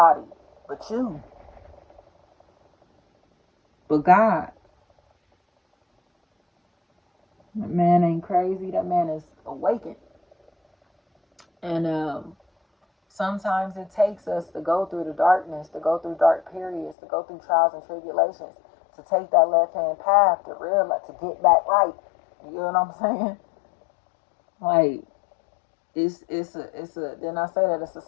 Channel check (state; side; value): drops out; right; at 16.9 s